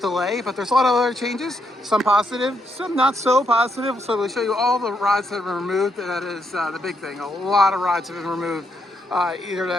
but there's a lot of other changes. Some positive, some not so positive. So we'll show you all the rides that have been removed. That is the big thing. A lot of rides have been removed. Either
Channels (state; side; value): normal; both; correlation 0.78